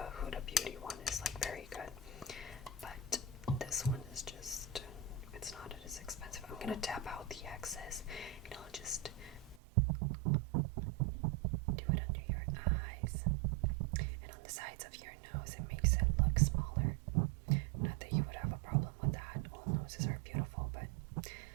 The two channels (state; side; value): drops out; left; at 9.6 s